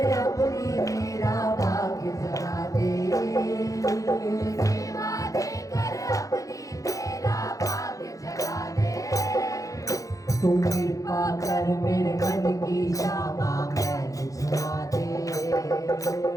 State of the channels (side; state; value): right; late; 0.16 ms